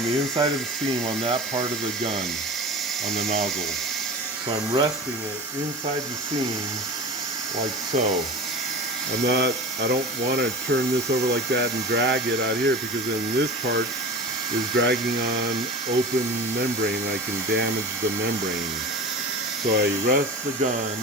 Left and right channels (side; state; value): both; normal; correlation 0.33